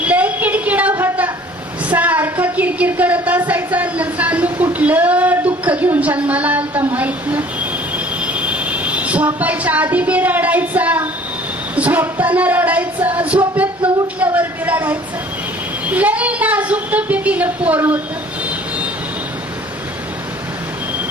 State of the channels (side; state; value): both; normal; correlation 0.52